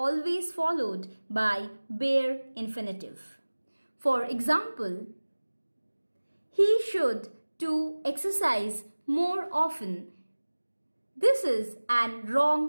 followed by bare infinitive. For example, he should to exercise more often. This is an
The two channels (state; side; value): inverted; both; correlation -1.00